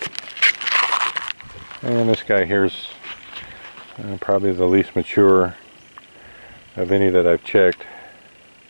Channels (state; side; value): inverted; both; correlation -1.00